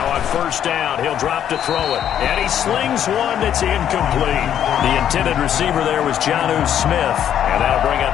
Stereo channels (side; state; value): right; quieter; 9.9 dB